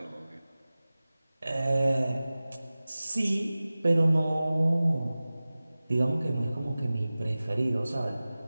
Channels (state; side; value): inverted; both; correlation -0.97